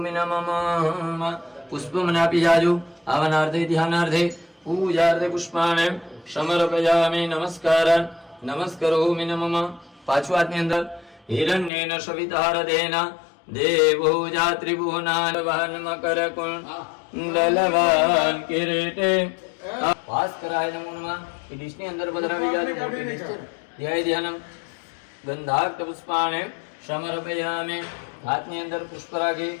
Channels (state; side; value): drops out; right; at 11.7 s